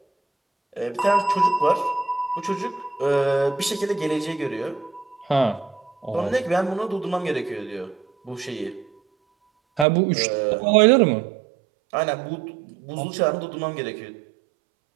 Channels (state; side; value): drops out; left; at 9.9 s